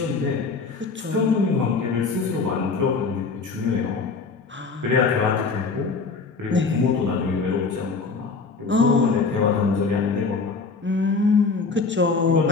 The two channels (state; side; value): quieter; right; 4.5 dB